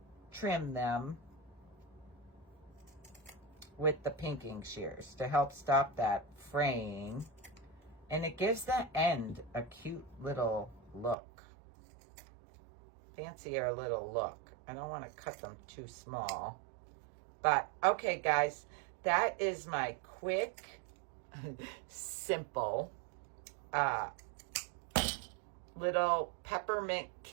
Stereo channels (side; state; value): left; drops out; at 11.2 s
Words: trim them with the pinking shears to help stop that fraying. And it gives the end a cute little look. Fancier little look. I don't want to cut them too small. But, okay, guys. That is my quick, simple, little peppermint